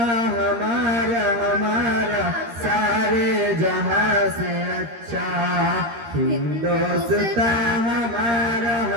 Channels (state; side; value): late; left; 13 ms